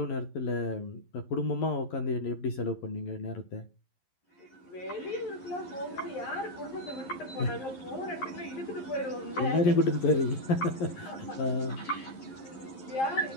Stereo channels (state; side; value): late; right; 11 ms